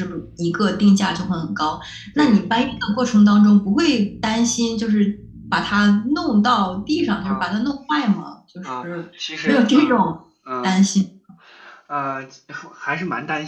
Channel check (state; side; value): identical; both; correlation 1.00